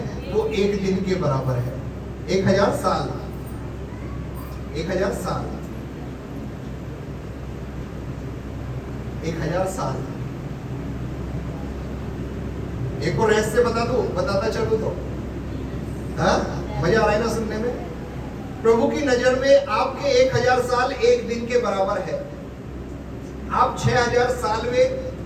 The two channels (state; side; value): identical; both; correlation 1.00